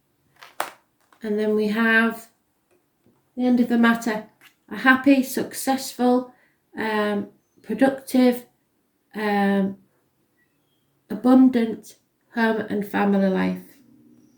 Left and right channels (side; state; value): both; identical; correlation 1.00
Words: And then we have the end of the matter. A happy, successful, productive, abundant home and family life.